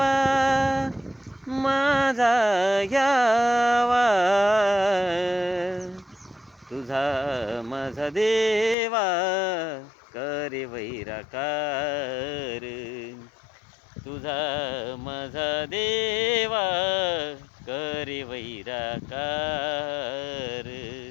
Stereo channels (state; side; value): drops out; right; at 8.8 s